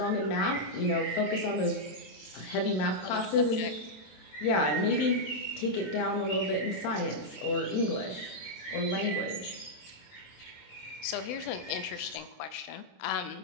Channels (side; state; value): right; late; 27 ms